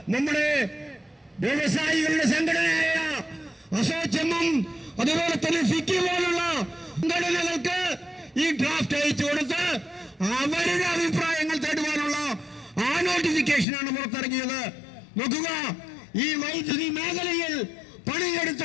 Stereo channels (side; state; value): right; drops out; at 13.7 s